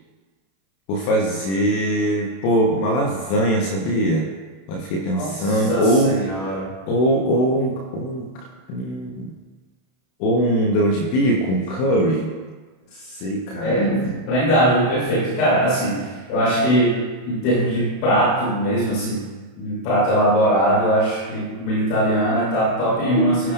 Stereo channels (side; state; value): right; late; 31 ms